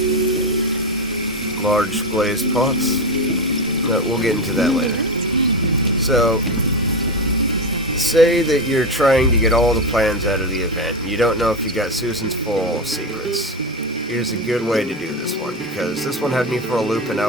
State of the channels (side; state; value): both; normal; correlation 0.15